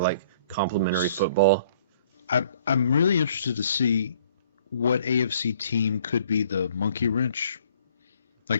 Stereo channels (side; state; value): both; inverted; correlation -0.59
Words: complementary football. I'm really interested to see what AFC team could be the monkey wrench.